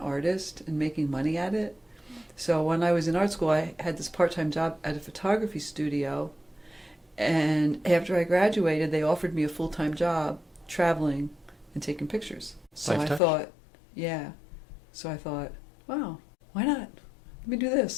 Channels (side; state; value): right; drops out; at 13.2 s